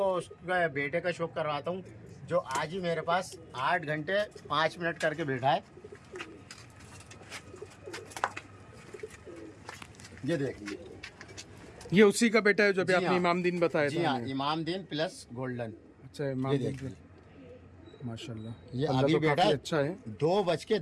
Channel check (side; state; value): both; identical; correlation 1.00